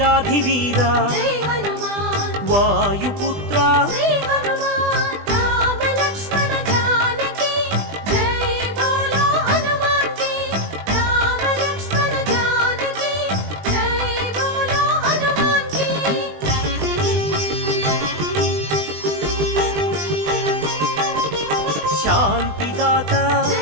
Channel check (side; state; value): left; late; 20 ms